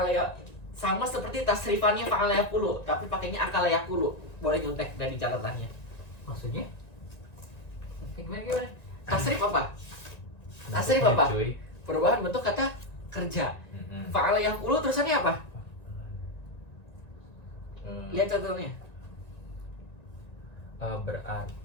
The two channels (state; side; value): late; right; 1.9 ms